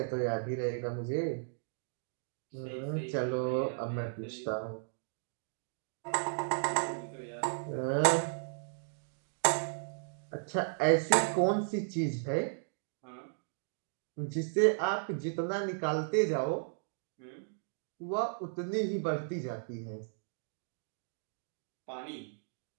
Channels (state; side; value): silent; left; digital silence